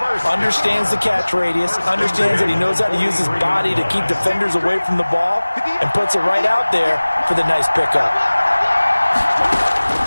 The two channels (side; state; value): both; inverted; correlation -1.00